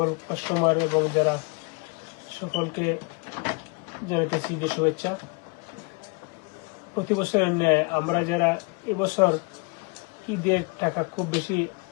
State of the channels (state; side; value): quieter; right; 31.2 dB